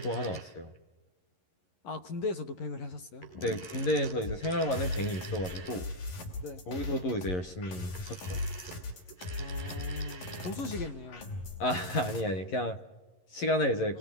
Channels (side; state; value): right; late; 11 ms